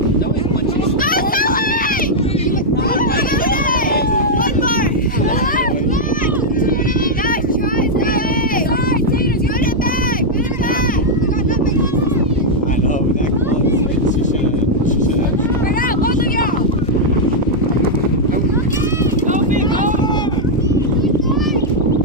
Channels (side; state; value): both; normal; correlation -0.03